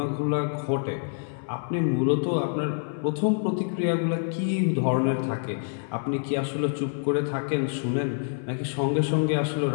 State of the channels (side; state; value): right; silent; 57 dB below the other